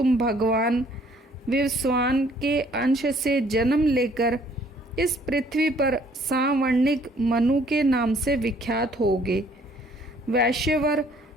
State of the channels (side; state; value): both; normal; correlation 0.60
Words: भगवान विवस्वान के अंश से जन्म लेकर इस पृथ्वी पर सावर्णिक मनु के नाम से विख्यात होगे। वैश्यवर,